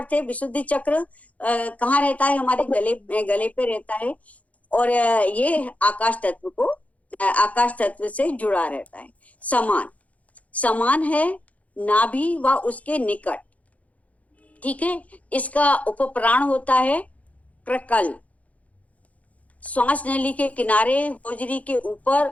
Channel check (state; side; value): late; right; 0.068 ms